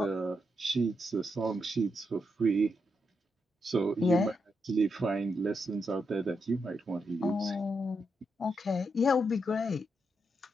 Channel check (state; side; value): normal; both; correlation 0.82